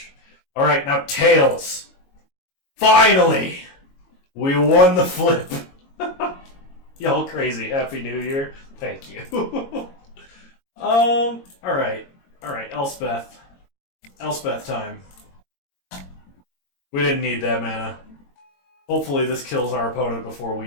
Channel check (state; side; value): late; right; 22 ms